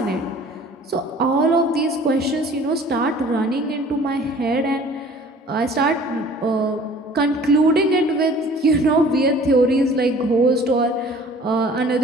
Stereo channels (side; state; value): both; normal; correlation 0.50